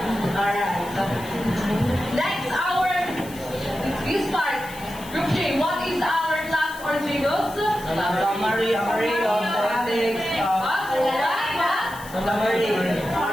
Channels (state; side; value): noise; left; hiss, 17 dB below the sound